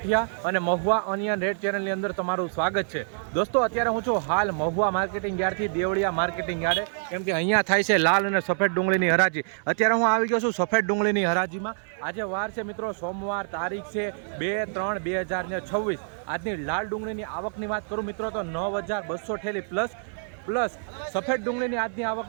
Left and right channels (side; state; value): left; silent; digital silence